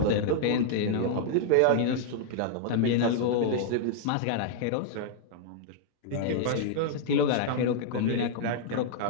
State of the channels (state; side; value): different; both; correlation -0.01